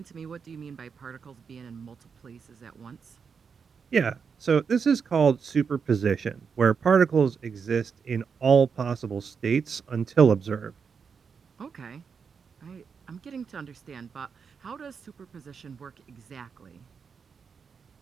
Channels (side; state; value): left; quieter; 6.0 dB